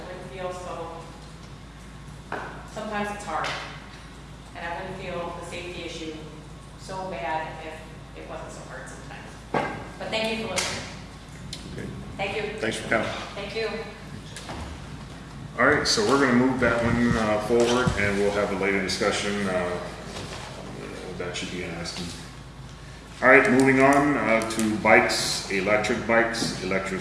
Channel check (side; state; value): both; identical; correlation 1.00